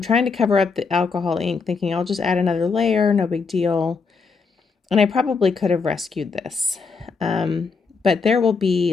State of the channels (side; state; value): right; quieter; 4.8 dB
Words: trying to cover up the alcohol ink, thinking I'll just add another layer, no big deal. And I probably could have rescued this. But there will